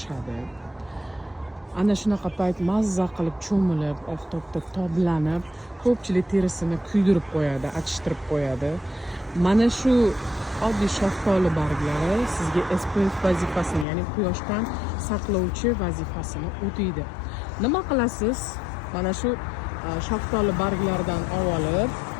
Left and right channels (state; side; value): drops out; right; at 13.9 s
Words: Ana shunaqa payt mazza qilib cho'milib, oftobda toblanib, ko'pchilik terisini kuydirib qo'yadi, achishtirib qo'yadi. Mana shu oddiy shaftoli barglari sizga SPF vazifasini, ya'ni quyoshdan saqlovchi vazifasini o'taydi. Nima qilasiz? Mana shu shaftoli barglaridan olib,